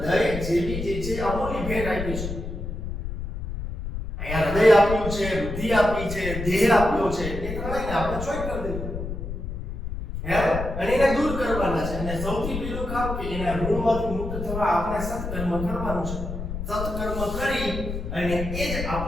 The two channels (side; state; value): left; noise; rumble, 6 dB below the sound